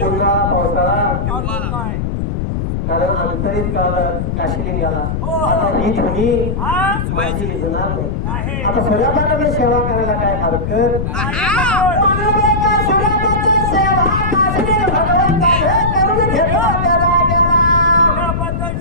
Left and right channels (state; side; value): noise; left; rumble, 2 dB below the sound